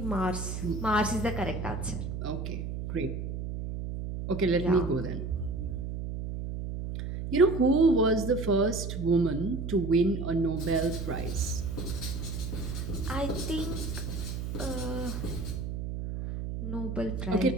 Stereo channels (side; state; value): right; noise; hum, 5 dB below the sound